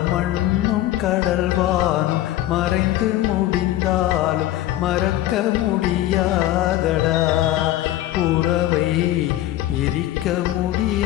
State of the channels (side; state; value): right; quieter; 14.5 dB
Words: மண்ணும் கடல்வானும் மறைந்து முடிந்தாலும் மறக்க முடியாதடா, உறவை பிரிக்க